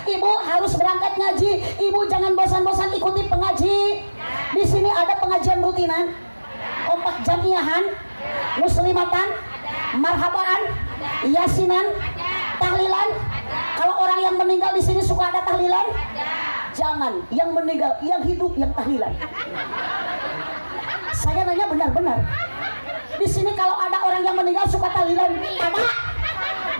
Ibu harus berangkat ngaji. Ibu jangan bosan-bosan ikuti pengaji. Di sini ada pengajian rutinan, kompak jamiahan, muslimatan, marhabaan, yasinan, tahlilan. Kalau orang yang meninggal di sini suka ada tahlilan? Jangan, yang meninggal, yang hidup yang tahlilan. Saya nanya benar-benar. Di sini kalau ada orang yang meninggal suka tahlilan? Ada.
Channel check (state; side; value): inverted; both; correlation -1.00